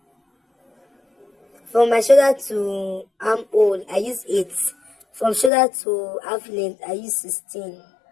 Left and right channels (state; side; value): drops out; right; at 5.5 s